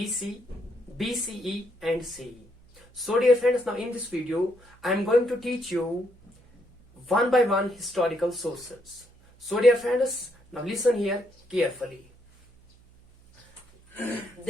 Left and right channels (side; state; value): right; noise; hum, 28 dB below the sound